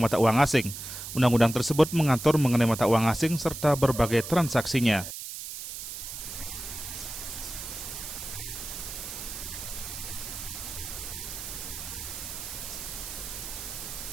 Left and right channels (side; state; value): right; noise; hiss, 8 dB below the sound